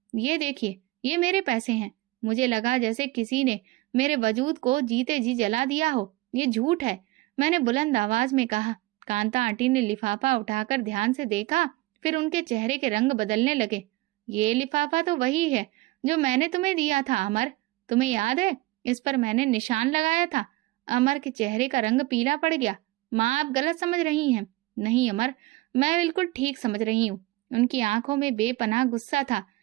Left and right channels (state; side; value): quieter; left; 19.5 dB